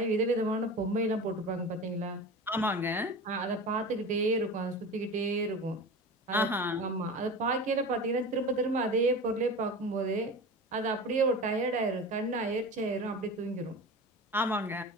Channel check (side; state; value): both; normal; correlation 0.32